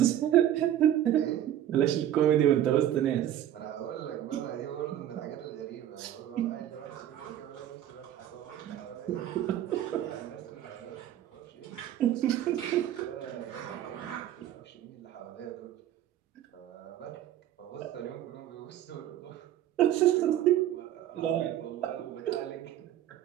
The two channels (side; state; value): left; quieter; 11.7 dB